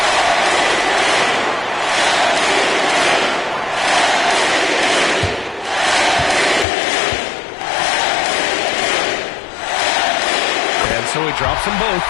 And so he drops them both,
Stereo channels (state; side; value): drops out; right; at 6.7 s